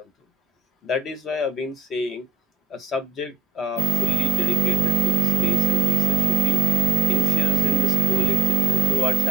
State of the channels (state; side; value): quieter; left; 5.4 dB